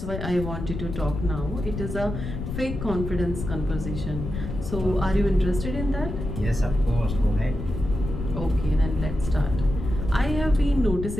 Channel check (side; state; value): left; noise; rumble, 6 dB below the sound